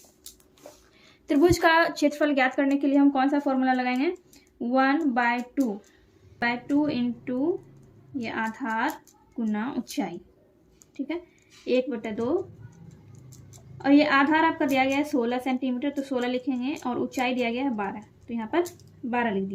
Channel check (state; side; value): identical; both; correlation 1.00